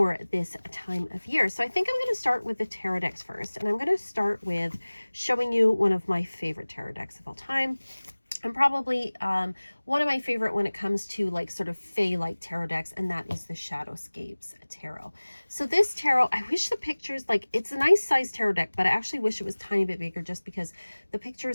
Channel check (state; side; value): inverted; both; correlation -1.00